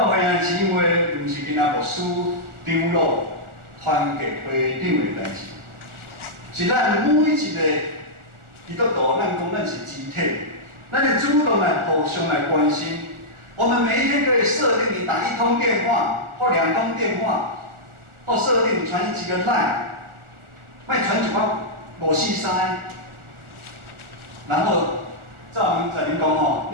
会兄弟姊妹，毋是囡仔牧师长老。团结会长的代志，是咱每一个基督徒，咱讲咱是集体，咱得主动来互相来关心。我们每一天可以设定你打1通电话或2通电话，或设定传几个 line， 卖传一包543，然后照明仔您讲哦，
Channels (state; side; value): late; left; 1.4 ms